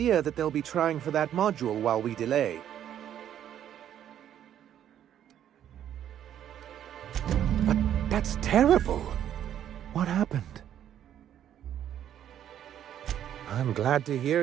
that they'll be trying for that module while we delay. But that's terrible. What happened? I'm glad to hear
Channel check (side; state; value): left; quieter; 10.4 dB